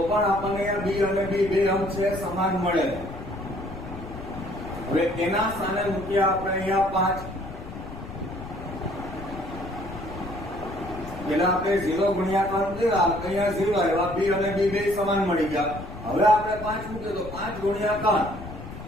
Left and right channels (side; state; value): left; noise; rumble, 12 dB below the sound